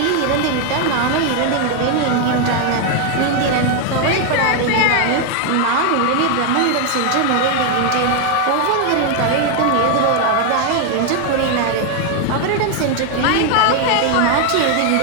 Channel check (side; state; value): both; different; correlation 0.01